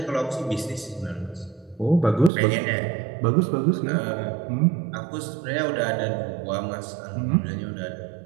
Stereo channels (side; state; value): left; drops out; at 2.3 s